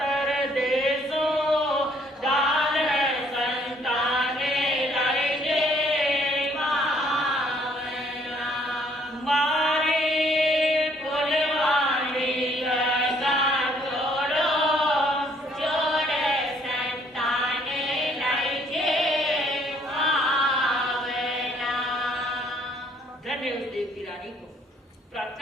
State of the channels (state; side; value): normal; both; correlation 0.64